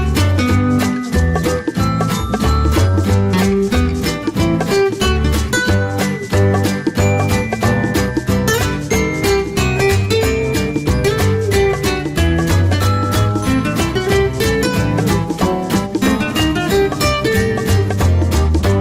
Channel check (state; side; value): identical; both; correlation 1.00